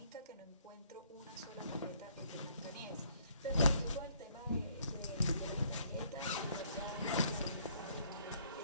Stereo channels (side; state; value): both; inverted; correlation -0.64